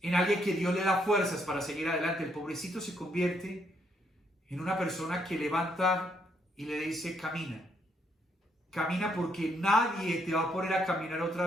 en alguien que Dios le da fuerzas para seguir adelante. El pobrecito se convierte en una persona que levanta y le dice, camina. Camina, porque nadie te va a poner a caminar otra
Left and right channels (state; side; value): normal; both; correlation 0.73